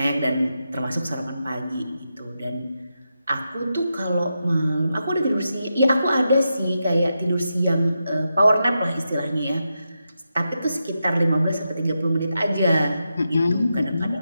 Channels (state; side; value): inverted; both; correlation -0.87